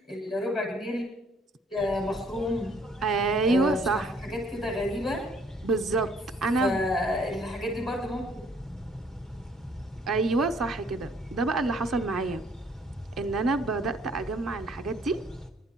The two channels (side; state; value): both; normal; correlation 0.61